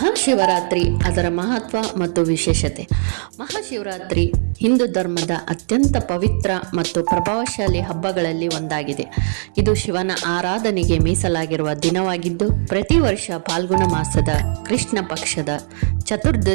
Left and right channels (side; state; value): left; silent; digital silence